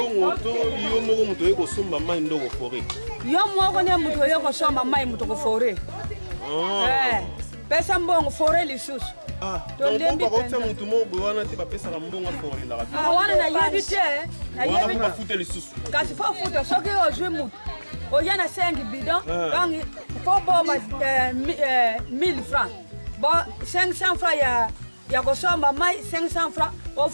to yo moko muto yeko somba mai ndoko fore. Yo moko ne muto yeko somba mai muto ko fore. Pesa mbongo fore lisusu. Donc on va muto moko wana te bapesaka mbongo fore la. Wana na yebite, na yebite ba futa lisusu. Kasi fo futa soki ozwe muto. Oyana 5 bidon, donc faut bomba 1000 francs. Bon 500 francs ya kosomba mai 500 francs o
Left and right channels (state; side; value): inverted; both; correlation -1.00